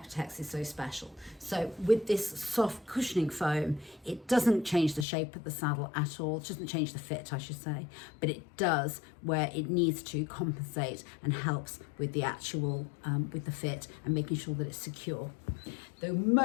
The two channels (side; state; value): right; drops out; at 5.1 s